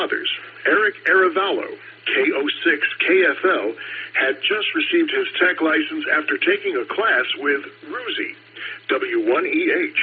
Eric Aravallo, KO6 KFL, had just received his tech license after taking a class with Ruzi,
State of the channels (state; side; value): identical; both; correlation 1.00